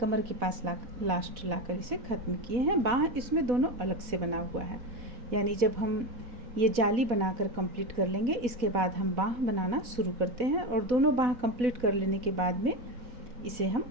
के पास लास्ट लाकर इसे ख़त्म किए हैं। बाह इसमें दोनों अलग से बना हुआ है, यानी जब हम ये जाली बनाकर कंप्लीट कर लेंगे इसके बाद हम बाह बनाना शुरू करते हैं और दोनों बाह कंप्लीट कर लेने के बाद में इसे हम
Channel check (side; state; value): left; late; 4.1 ms